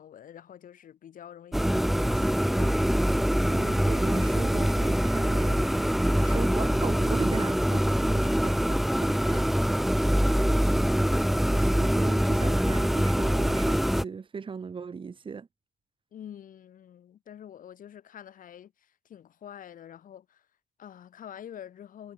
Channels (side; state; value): both; normal; correlation 0.98